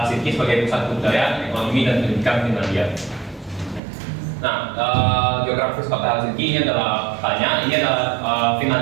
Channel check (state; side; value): drops out; left; at 3.8 s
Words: sebagai pusat budaya, ekonomi, dan pendidikan Finlandia. Nah, geografis kota Helsinki ini adalah ini adalah